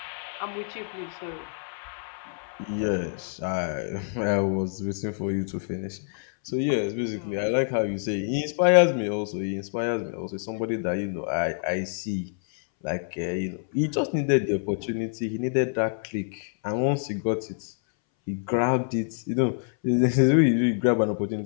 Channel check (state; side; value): silent; right; 60 dB below the other